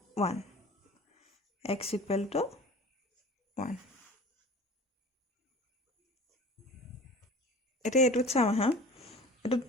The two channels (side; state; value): both; normal; correlation 0.41